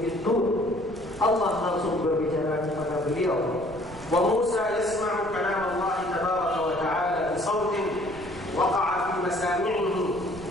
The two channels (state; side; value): noise; right; rumble, 18 dB below the sound